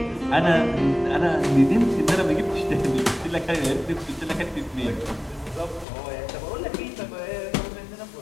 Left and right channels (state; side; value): drops out; right; at 5.9 s